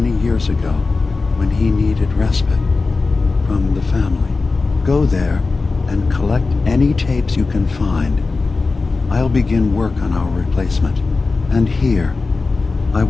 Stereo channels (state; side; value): quieter; right; 3.9 dB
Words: years ago when he needed respite from the family. Go there and collect any tapes you can find. I'll begin work on our replacement. And here, I